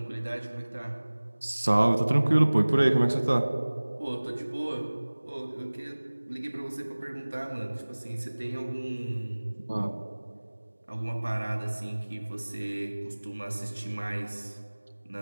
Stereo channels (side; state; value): both; inverted; correlation -1.00